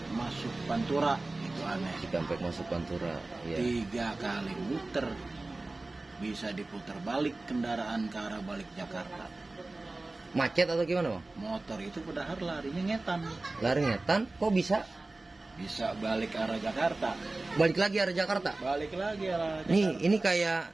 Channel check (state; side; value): quieter; left; 3.1 dB